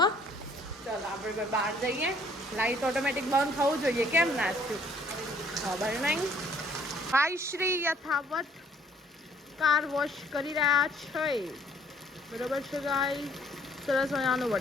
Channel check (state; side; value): normal; both; correlation 0.61